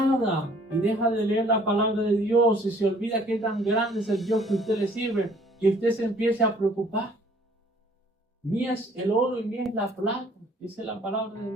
y deja de leer la palabra de Dios y se olvida qué tan grande es el Dios que usted le sirve, que usted se empiece a preocupar. Mía es el oro y mía es la plata, dice la palabra de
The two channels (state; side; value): normal; both; correlation 0.58